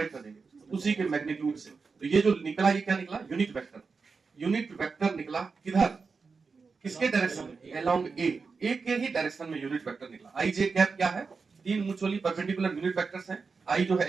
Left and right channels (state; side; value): quieter; left; 4.8 dB